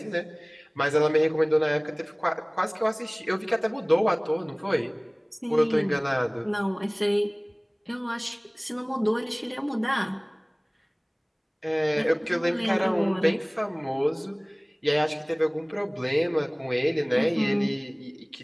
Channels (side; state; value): both; identical; correlation 1.00